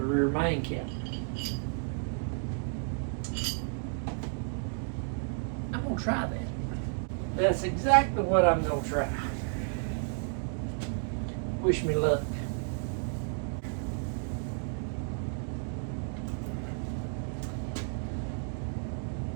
rear main cap. I'm gonna try that. That's exactly what I'm gonna try. Wish me luck.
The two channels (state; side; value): silent; left; 56 dB below the other